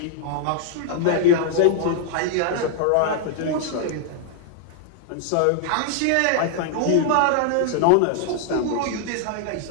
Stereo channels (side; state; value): both; different; correlation -0.01